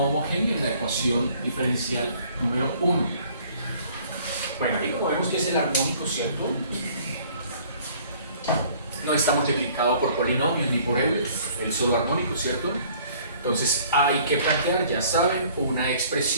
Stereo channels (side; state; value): both; inverted; correlation -0.56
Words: homogéneo en la ecuación diferencial número 1. Bueno, ahí como vemos que es el armónico, ¿cierto? No está multiplicado por polinomios ni por Euler, el solo armónico, ¿cierto? Entonces hay que plantear, ya saben, una